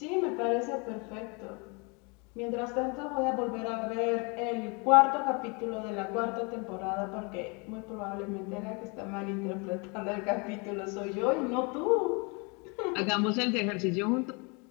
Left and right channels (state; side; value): quieter; right; 31.6 dB